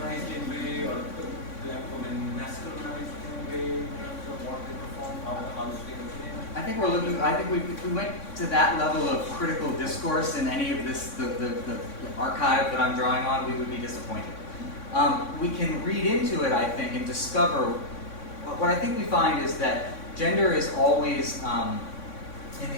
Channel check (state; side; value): late; right; 3.6 ms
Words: in a way, or the black women masculinized in a way in terms of what they perform, how the house they came? I think if we went to that level of critical discourse in any of this, the archive that I'm drawing on, we would be disappointed. We can read into it, I think, and discover, what I think we find is that gender is always,